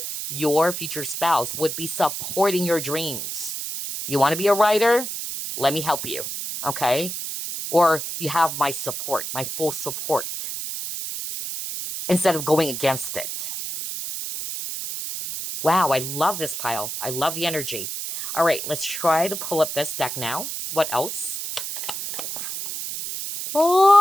your future spouse would be supporting your dreams. You want to be a writer? Let me help you, okay? Or you have my support, my full support, instead of going against it. Wow, I love this pile. I love the energy. All right, let's try to pull up this deck now. What else?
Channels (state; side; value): noise; right; hiss, 5 dB below the sound